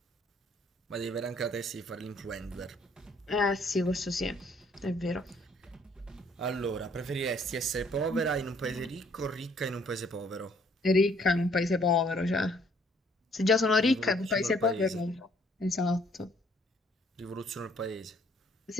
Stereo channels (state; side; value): normal; both; correlation 0.63